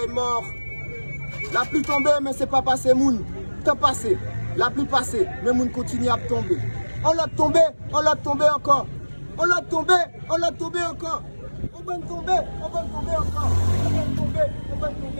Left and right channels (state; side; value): inverted; both; correlation -1.00